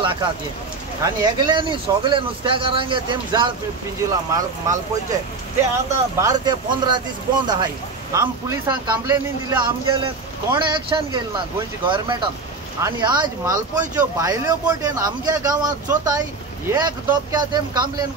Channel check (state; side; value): quieter; left; 4.0 dB